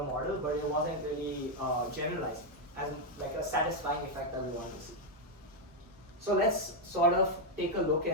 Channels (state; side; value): normal; both; correlation 0.01